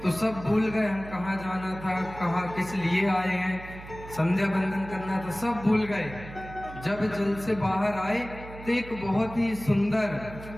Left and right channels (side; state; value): right; noise; hum, 14 dB below the sound